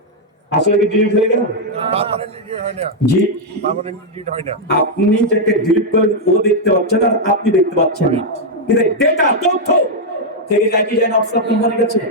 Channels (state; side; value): normal; both; correlation -0.02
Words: আসলে কি ডিলিট হয়ে গেল? জি, আপনি যাকে ডিলিট করেন ও দেখতে পাচ্ছেন আর আপনি দেখতে পাচ্ছেন না, কিন্তু ডেটা তথ্য থেকে যায় কি যায় না অফিসার কোম্পানির কাছে,